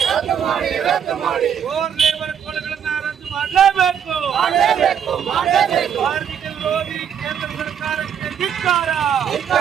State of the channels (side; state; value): left; quieter; 8.3 dB